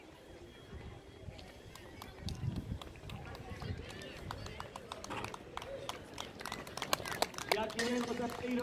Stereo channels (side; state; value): both; identical; correlation 1.00